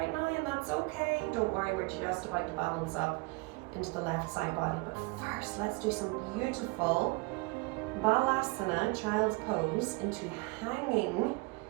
now, and that's okay. Don't worry, we're just about to balance up into the left side body. But first, let's do some beautiful Balasana, child's pose, into hanging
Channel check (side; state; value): left; quieter; 26.8 dB